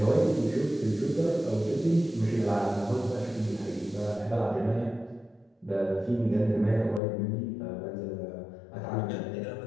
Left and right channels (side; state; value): right; drops out; at 7.0 s